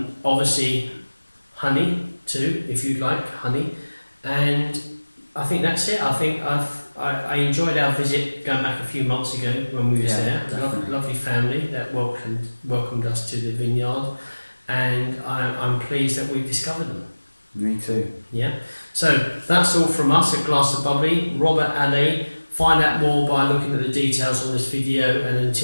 obviously honey too, if you'd like honey. And I think that's it. I think I enjoyed our visit going back a few months ago when we was there. Lovely family that welcomed us to the vineyard, and I'm pleased that we've discovered them. Me too. Yeah. So that's all from us at Glass of Bubbly. Robert Allait. Find out more by looking at the details on this video, and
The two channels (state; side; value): inverted; both; correlation -1.00